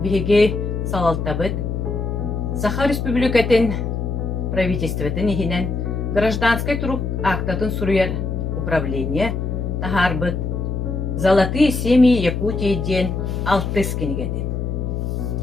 бігі салалтабыд, Саха Республикатын правительстветін ехінен гражданской труп актатын суруяр управление тахарбыт «Золотые семьи Якутии» ден 6 кинигеден.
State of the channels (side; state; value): left; noise; hum, 2 dB below the sound